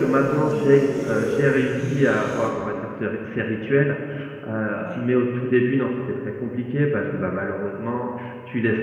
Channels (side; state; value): both; identical; correlation 1.00